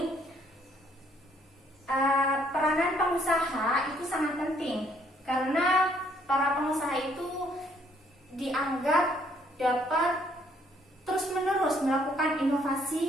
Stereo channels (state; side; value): normal; both; correlation 0.66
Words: peranan pengusaha itu sangat penting karena para pengusaha itu dianggap dapat terus-menerus melakukan